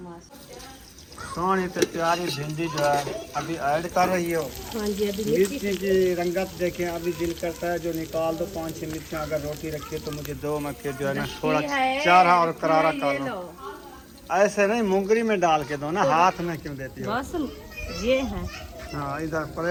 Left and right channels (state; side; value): identical; both; correlation 1.00